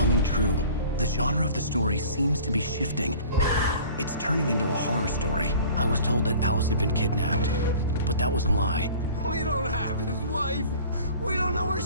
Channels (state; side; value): inverted; both; correlation -0.46